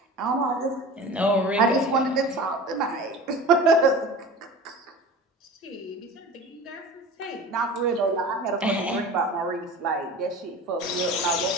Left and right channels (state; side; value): normal; both; correlation 0.36